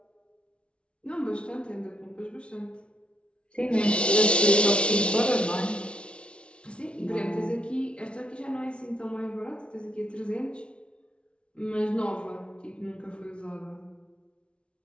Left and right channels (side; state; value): right; late; 0.059 ms